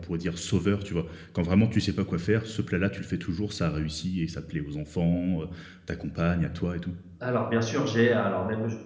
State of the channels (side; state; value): both; identical; correlation 1.00